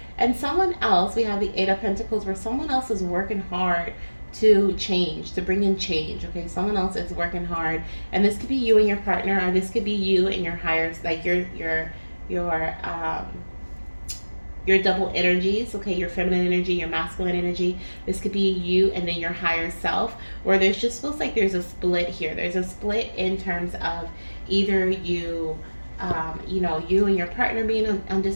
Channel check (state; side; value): inverted; both; correlation -1.00